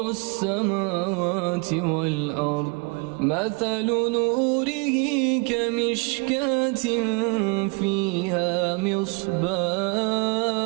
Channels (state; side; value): quieter; left; 30.1 dB